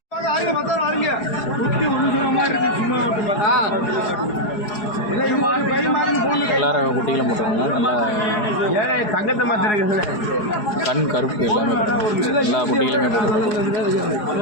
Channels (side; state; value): right; late; 4.8 ms